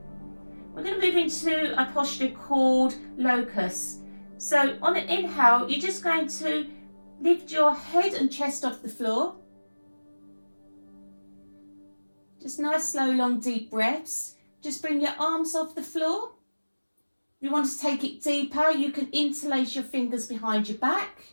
We're going to move into a posture called locust. So on an inhale, you're just going to lift your head and chest off the floor. Just nice, slow, long, deep breaths. Just bring your arms off the floor. If you want to take it deeper, you can interlace your fingers behind your back.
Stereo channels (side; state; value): both; inverted; correlation -1.00